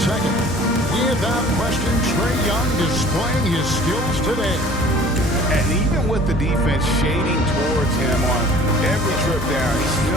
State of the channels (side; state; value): both; normal; correlation 0.48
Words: Without question, Trae Young displaying his skills today. And even with the defense shading towards him on every trip down, he